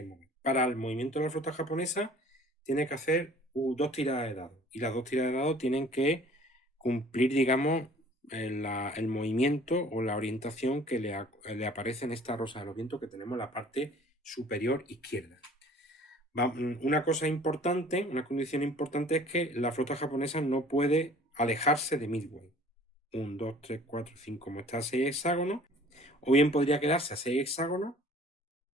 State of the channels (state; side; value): normal; both; correlation 0.51